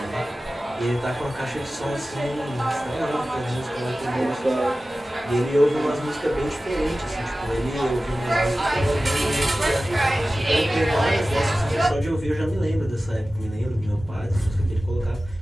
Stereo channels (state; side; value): normal; both; correlation 0.96